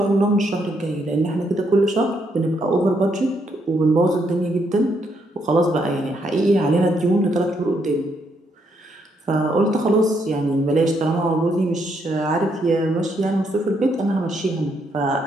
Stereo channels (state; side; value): normal; both; correlation 0.75